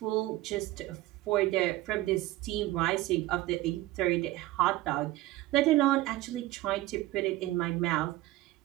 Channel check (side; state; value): left; quieter; 17.1 dB